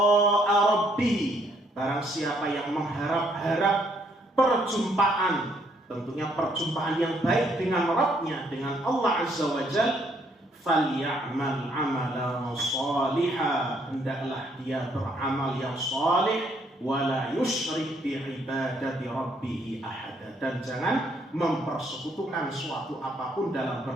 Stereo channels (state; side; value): normal; both; correlation 0.69